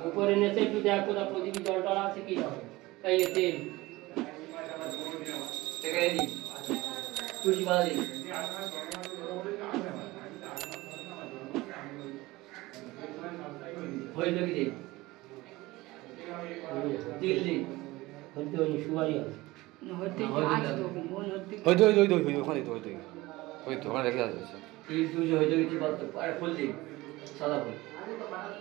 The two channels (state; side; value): quieter; left; 20.0 dB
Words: উপরে নেচে একটু দেখ কোথা প্রদীপী জল টল আছে কি হবে তাই তেল এখানে দিই তুলসী পাতা দিই হয়ে যাবে দিই তেল দিই হইতে ওই সুপারি আছে হইতে আছে তো মন হইতে ওখানে ওখানে রেখে আছে তেল তুলসী হয়ে যাবে কি বলতো আর ফুল দিই সাদা ফুল